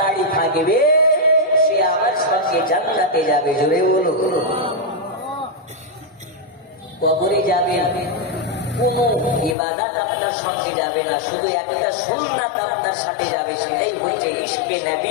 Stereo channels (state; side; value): drops out; right; at 9.6 s